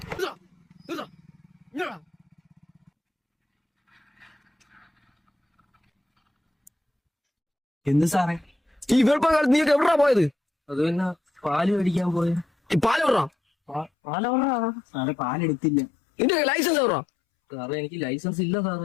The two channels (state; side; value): drops out; right; at 13.9 s